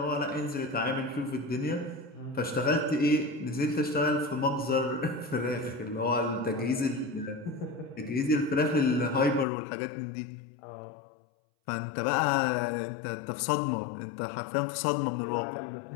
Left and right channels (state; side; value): drops out; right; at 9.5 s